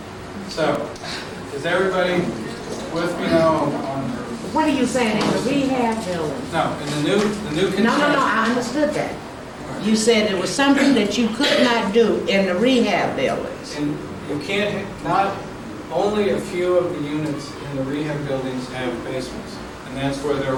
So, is everybody with me now on What are you saying, in the rehab building? no, in the new construction? No, I understood that. You said it was something that you could not do in the rehab buildings. And you can't, not, only a few of the units in the rehab buildings have basements. And that's where there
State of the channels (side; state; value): both; identical; correlation 1.00